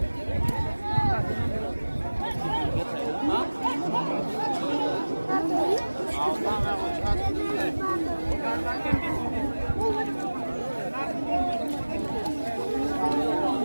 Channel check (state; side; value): inverted; both; correlation -1.00